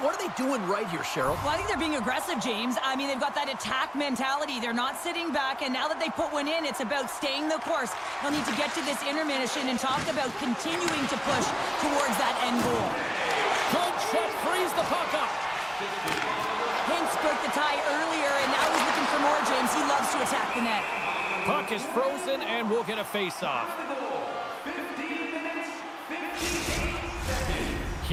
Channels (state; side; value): identical; both; correlation 1.00